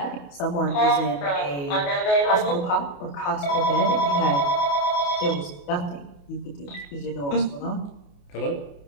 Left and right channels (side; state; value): right; late; 28 ms